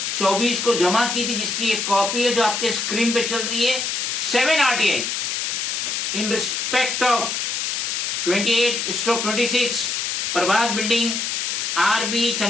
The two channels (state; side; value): noise; left; hiss, 1 dB below the sound